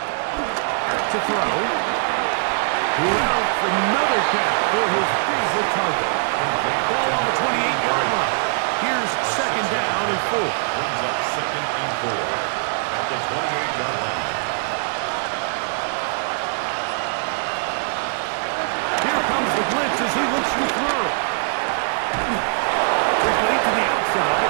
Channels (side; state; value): left; silent; digital silence